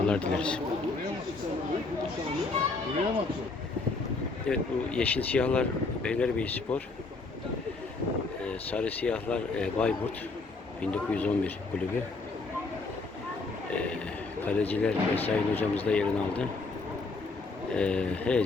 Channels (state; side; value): quieter; right; 3.7 dB